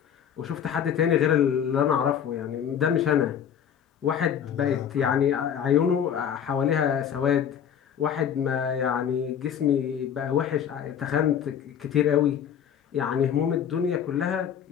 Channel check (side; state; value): right; quieter; 8.7 dB